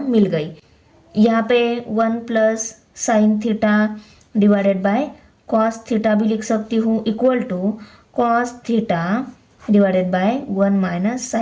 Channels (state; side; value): identical; both; correlation 1.00